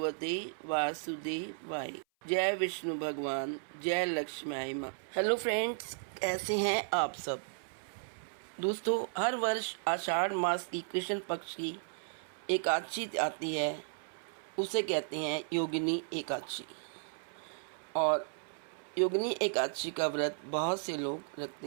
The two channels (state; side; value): silent; left; 55 dB below the other